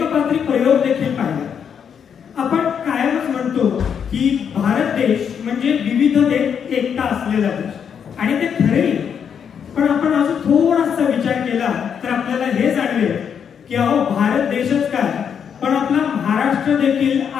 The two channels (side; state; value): right; quieter; 7.6 dB